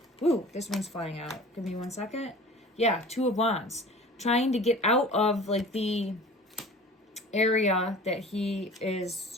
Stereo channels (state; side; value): normal; both; correlation 0.42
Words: Ooh, this one's flying out. Give me 1 second. Yeah, 2 of Wands. Trying to get out of like the area that he